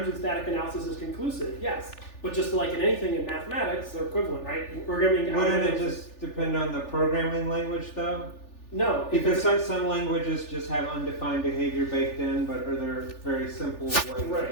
when static analysis is conclusive. Yes, but just like in anything in mathematics, they're equivalent, right? In programming. Wouldn't it algorithms- just depend on the programming language though? No, Because some languages just have undefined behavior baked in, but other very simple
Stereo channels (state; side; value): late; right; 3.4 ms